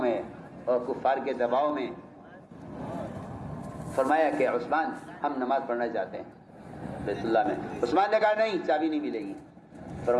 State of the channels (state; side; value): identical; both; correlation 1.00